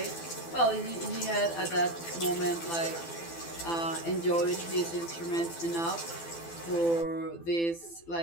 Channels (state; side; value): late; right; 12 ms